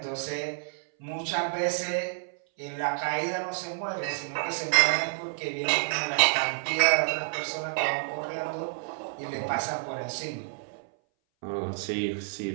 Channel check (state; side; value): silent; left; 58 dB below the other